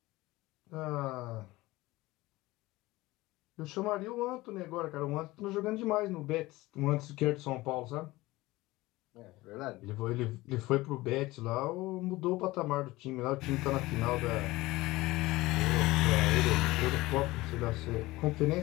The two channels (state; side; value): quieter; right; 19.4 dB